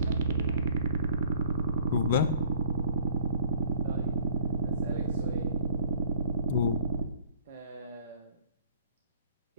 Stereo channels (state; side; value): inverted; both; correlation -0.54